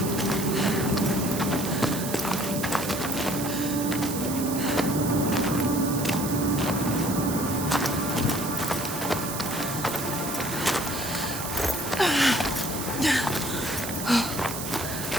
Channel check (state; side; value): noise; right; hiss, 6 dB below the sound